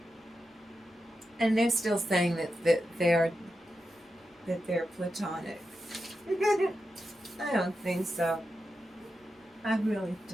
And they're still saying that they're platonic. I don't think so. I really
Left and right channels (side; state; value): both; normal; correlation 0.89